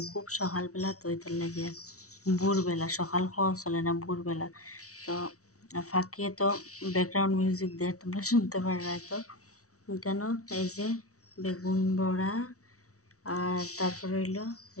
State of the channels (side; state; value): right; late; 0.65 ms